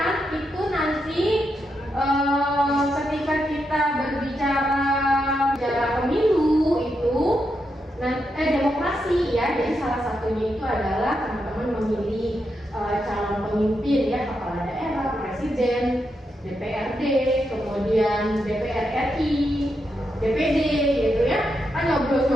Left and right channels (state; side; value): normal; both; correlation 0.84